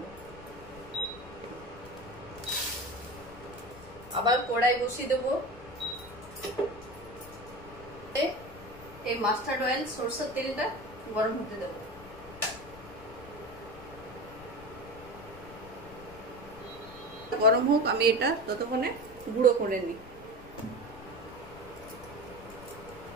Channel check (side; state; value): left; noise; rumble, 17 dB below the sound